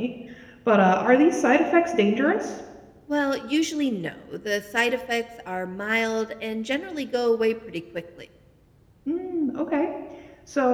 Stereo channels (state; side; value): identical; both; correlation 1.00